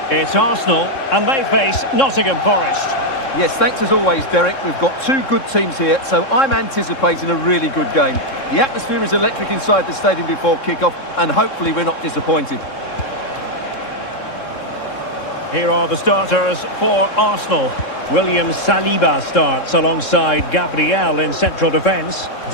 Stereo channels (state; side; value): late; right; 3.7 ms